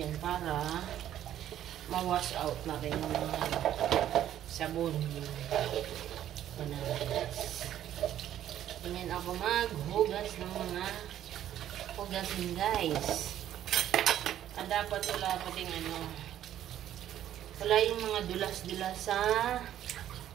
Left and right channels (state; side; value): quieter; left; 11.5 dB